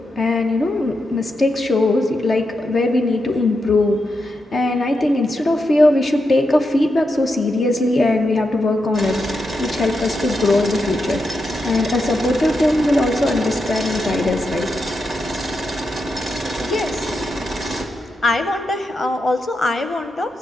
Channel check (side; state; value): both; normal; correlation 0.86